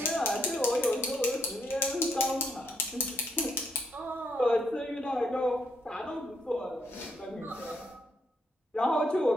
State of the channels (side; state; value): both; normal; correlation 0.75